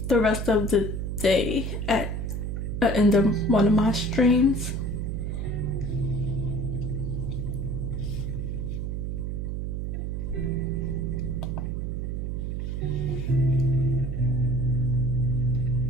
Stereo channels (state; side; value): noise; right; hum, 3 dB below the sound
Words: day at the end of one of my streams.